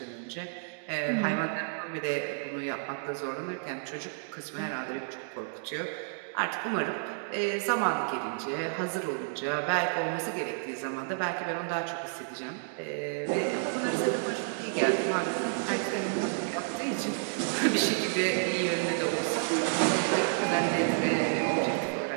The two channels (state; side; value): silent; left; digital silence